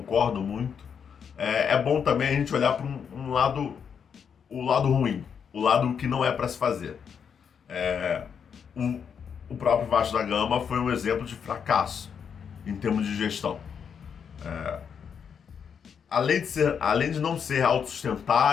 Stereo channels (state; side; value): quieter; right; 7.1 dB